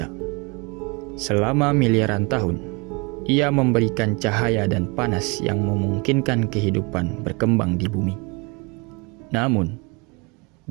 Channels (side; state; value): left; quieter; 29.3 dB